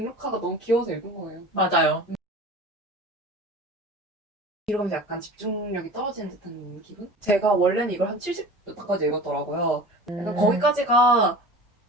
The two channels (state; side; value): normal; both; correlation 0.37